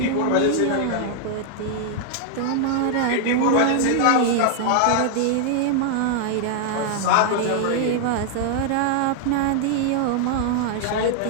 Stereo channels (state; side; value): different; both; correlation 0.00